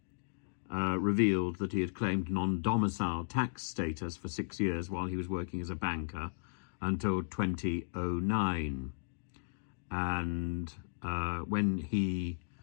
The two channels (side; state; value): right; silent; digital silence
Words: revealed that he had claimed non-domicile tax status for 6 years while he was working as a banker until 2009. And when he